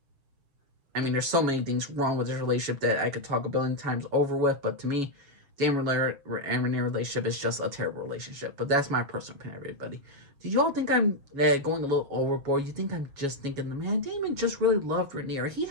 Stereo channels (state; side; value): late; left; 6.8 ms